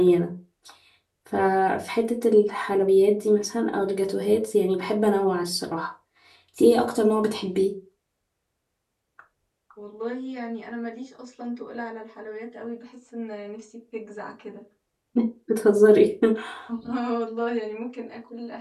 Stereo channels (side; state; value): both; identical; correlation 1.00